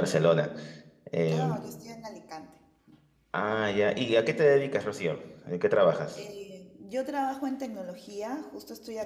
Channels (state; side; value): identical; both; correlation 1.00